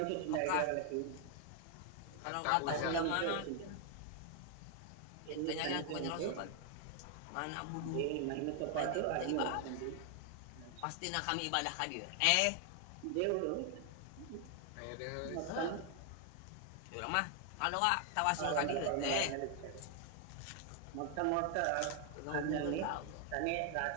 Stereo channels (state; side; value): different; both; correlation 0.00